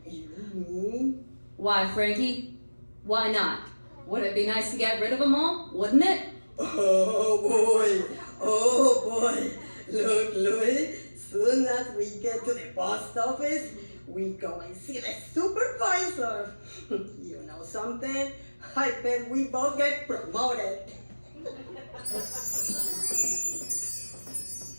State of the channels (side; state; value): both; inverted; correlation -1.00